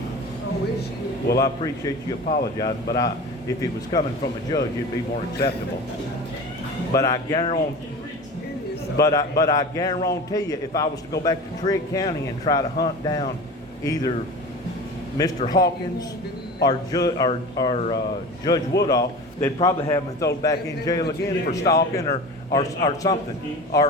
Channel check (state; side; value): normal; both; correlation 0.34